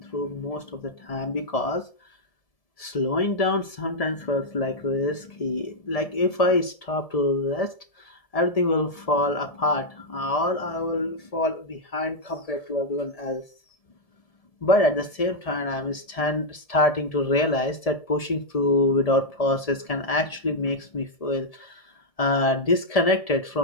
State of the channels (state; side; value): late; right; 1.7 ms